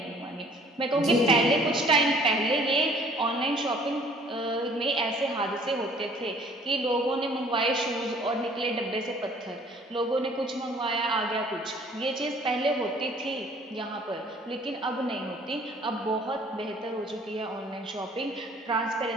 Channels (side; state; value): both; normal; correlation 0.55